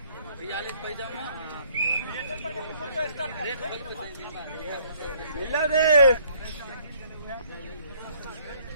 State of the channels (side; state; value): both; inverted; correlation -0.61